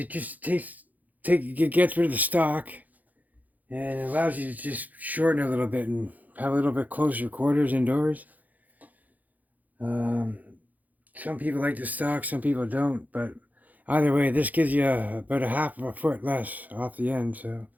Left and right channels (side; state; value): left; late; 0.080 ms